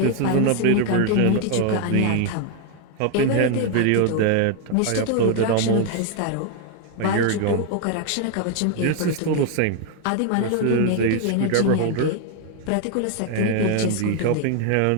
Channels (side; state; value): both; different; correlation 0.00